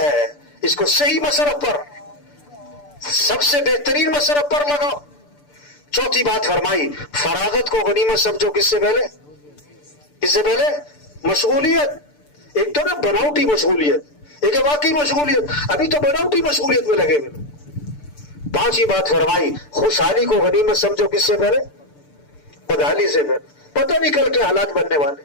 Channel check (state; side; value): late; right; 6.8 ms